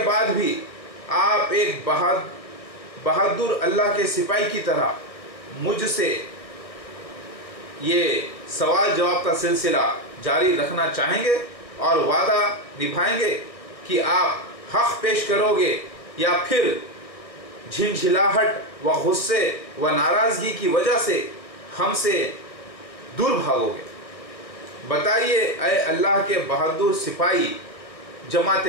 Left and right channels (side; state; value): right; late; 1.6 ms